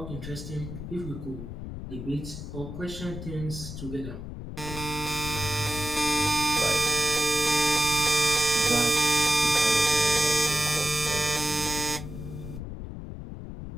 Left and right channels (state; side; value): noise; left; rumble, 9 dB below the sound